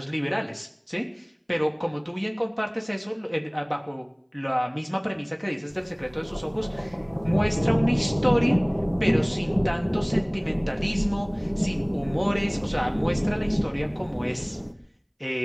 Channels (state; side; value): identical; both; correlation 1.00